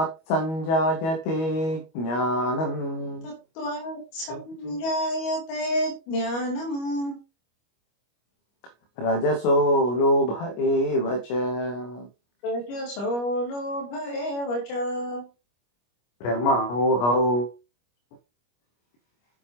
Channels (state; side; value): late; right; 25 ms